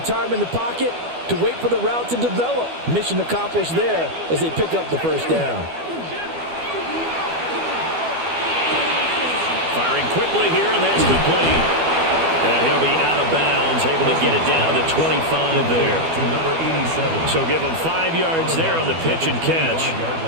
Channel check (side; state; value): left; late; 12 ms